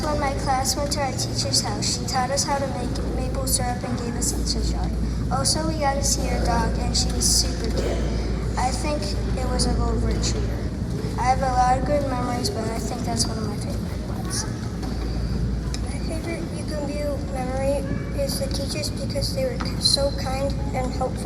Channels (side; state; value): both; identical; correlation 1.00